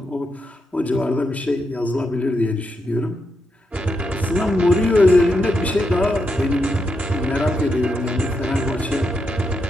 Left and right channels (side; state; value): both; normal; correlation 0.83